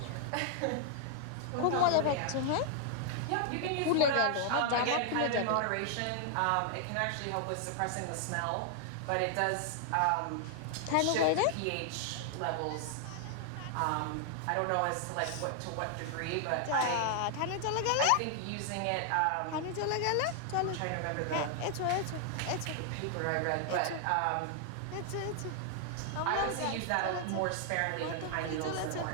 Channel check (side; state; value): both; different; correlation 0.00